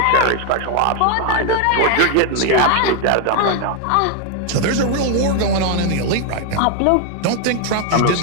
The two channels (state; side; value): different; both; correlation 0.00